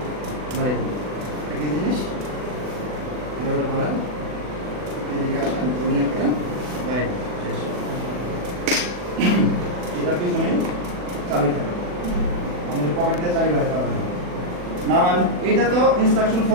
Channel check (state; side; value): late; left; 40 ms